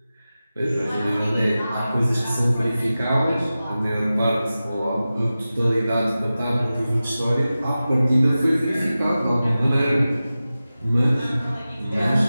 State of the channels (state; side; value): inverted; both; correlation -0.95